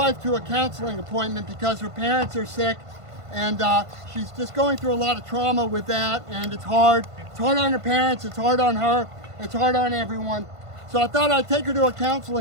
to a counseling appointment because her parents are sick, and she's just going through a lot of trauma with that, and it's hard. It's hard on her parents, it's hard on her, it's hard on everyone. So I thought I'd take her to a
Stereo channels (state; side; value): late; left; 1.5 ms